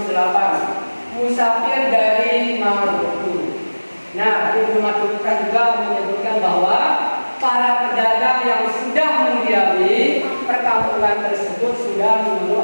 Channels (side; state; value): both; inverted; correlation -1.00